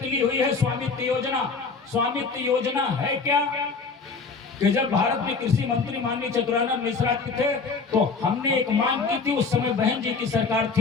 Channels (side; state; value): right; quieter; 4.7 dB